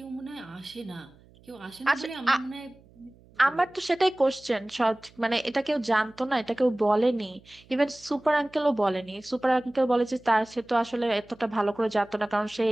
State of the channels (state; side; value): noise; right; hum, 27 dB below the sound